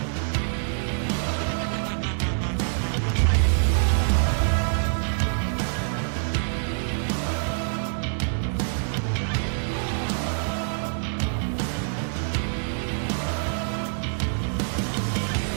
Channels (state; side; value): silent; left; digital silence